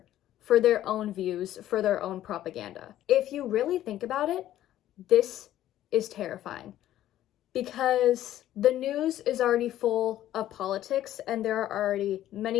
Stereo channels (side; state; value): right; quieter; 12.9 dB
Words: for their own views, for their own propaganda. If you really think about it, this is terrifying because the news is already full of politics and there are already